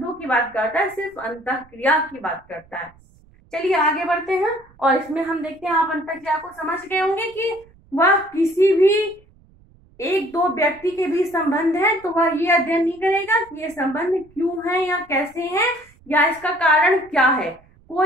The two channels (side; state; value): right; noise; rumble, 28 dB below the sound